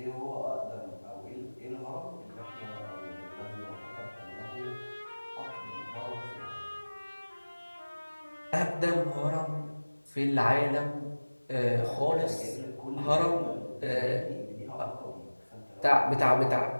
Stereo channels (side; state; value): both; inverted; correlation -1.00